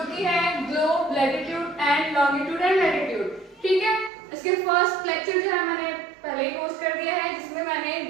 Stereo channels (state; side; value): drops out; left; at 4.1 s